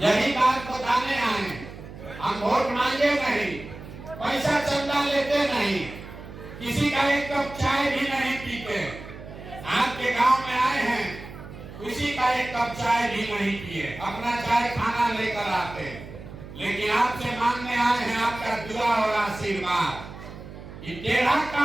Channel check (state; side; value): noise; right; hum, 14 dB below the sound